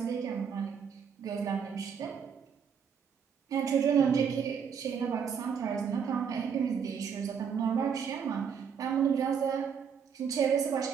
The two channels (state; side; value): quieter; left; 7.0 dB